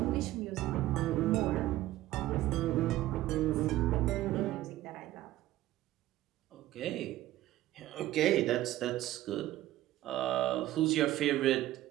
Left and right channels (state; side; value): quieter; left; 15.1 dB